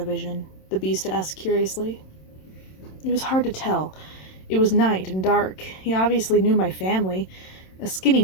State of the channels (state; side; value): late; right; 27 ms